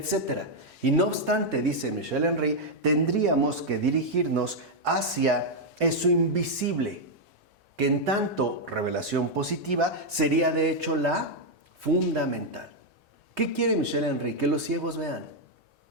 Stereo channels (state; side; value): normal; both; correlation -0.01